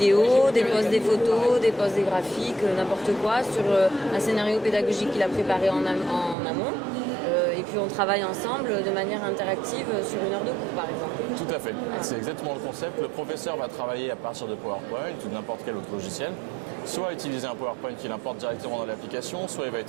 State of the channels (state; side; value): drops out; left; at 6.4 s